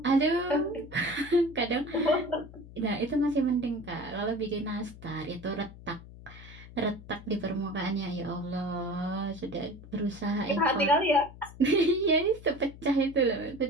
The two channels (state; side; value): noise; left; hum, 17 dB below the sound